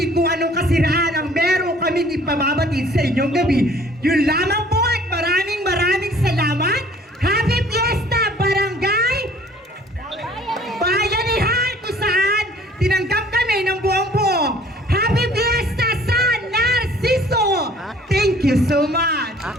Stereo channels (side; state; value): both; normal; correlation 0.54